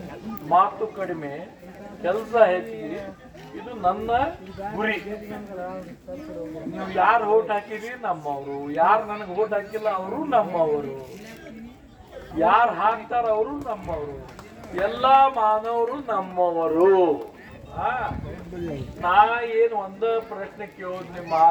ಮಾತು ಕಡಿಮೆ ಕೆಲಸ ಹೆಚ್ಚಿಗೆ, ಇದು ನನ್ನ ಗುರಿ. ನೀವು ಯಾರು ಓಟ್ ಹಾಕಿರಿ ನಮ್ಮವರು, ಯಾರು ನನಗೆ ಓಟ್ ಹಾಕಿಲ್ಲ ಅವರು ನಮ್ಮವರು, ಯಾರು ಹಾಕ್ತಾರ ಅವರು ನಮ್ಮವರು, ಎಲ್ಲಾ ಮಾನವರು ನಮ್ಮವರು. ನಾ ಏನು ಒಂದ ಪ್ರಶ್ನೆ ಕೇಳೋದು, ನಿಮ್ಮ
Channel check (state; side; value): identical; both; correlation 1.00